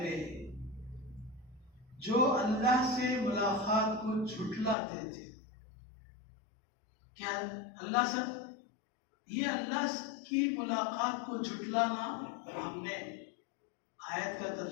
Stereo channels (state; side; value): drops out; right; at 4.8 s